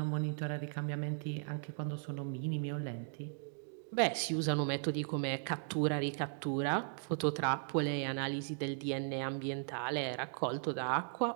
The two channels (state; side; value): silent; left; digital silence